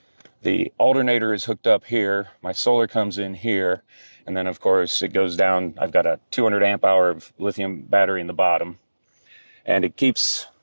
alternator is hooked up here. My solar comes in here. And then, of course, it goes down. I've got a 200 amp hour of lithium battery in the bottom. And it keeps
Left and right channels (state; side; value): inverted; both; correlation -1.00